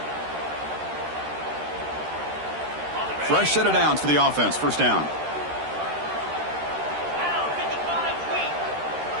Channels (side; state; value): left; late; 13 ms